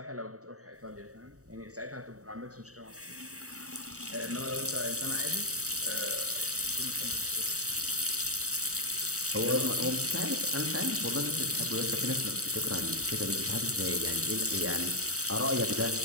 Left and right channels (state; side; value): late; left; 0.66 ms